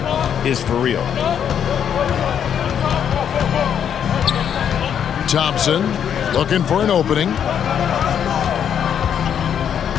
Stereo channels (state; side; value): quieter; right; 8.6 dB